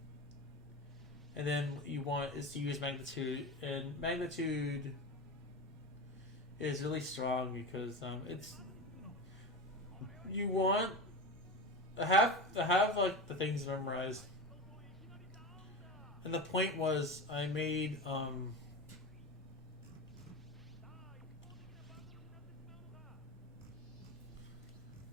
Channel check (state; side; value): normal; both; correlation 0.25